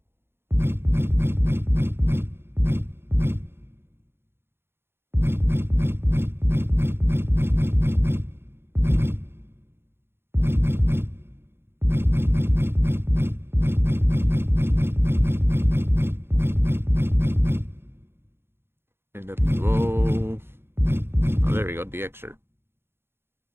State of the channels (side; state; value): left; late; 0.11 ms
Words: NWO. Oh, there we go, DX shirt.